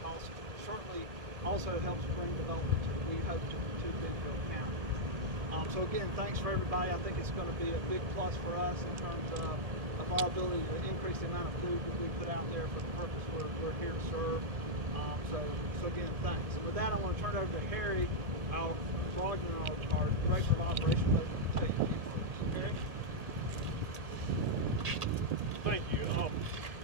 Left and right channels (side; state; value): left; late; 1.7 ms